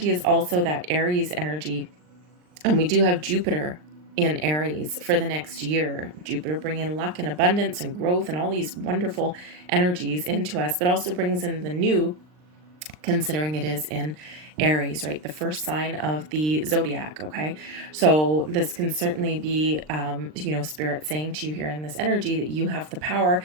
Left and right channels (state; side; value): late; left; 39 ms